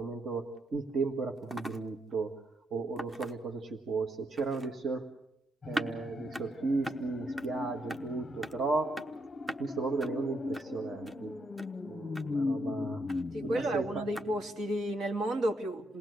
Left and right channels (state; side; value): normal; both; correlation 0.77